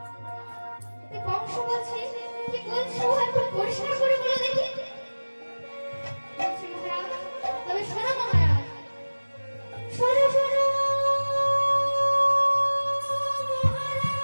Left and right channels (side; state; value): both; inverted; correlation -1.00